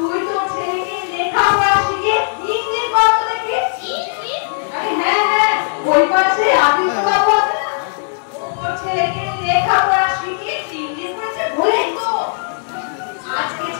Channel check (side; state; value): right; silent; digital silence